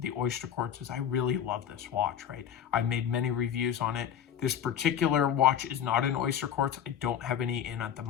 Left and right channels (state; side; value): quieter; right; 9.1 dB